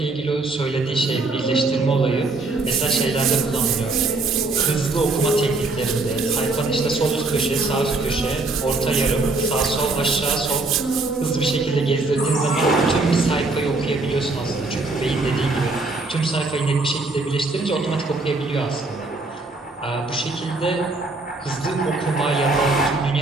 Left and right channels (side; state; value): left; quieter; 3.4 dB